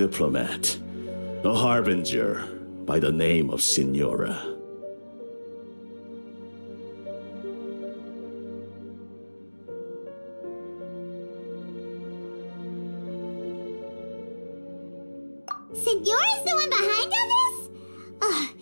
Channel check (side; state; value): both; inverted; correlation -1.00